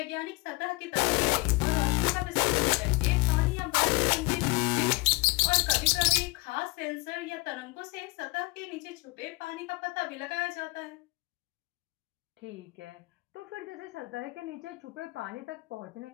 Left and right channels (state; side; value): quieter; right; 25.1 dB